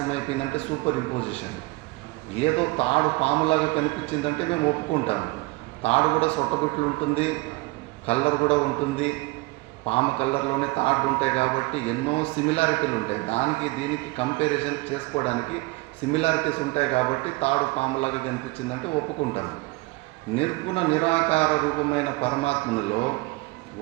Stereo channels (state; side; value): quieter; left; 23.3 dB